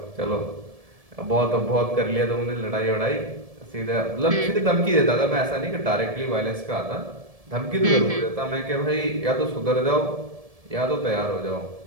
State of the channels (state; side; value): late; left; 1.7 ms